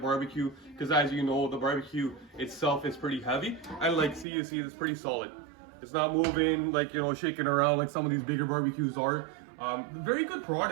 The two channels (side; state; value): left; drops out; at 4.2 s